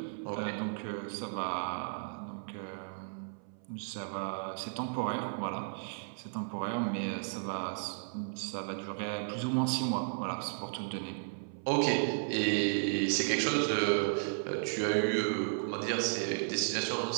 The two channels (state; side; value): silent; left; 55 dB below the other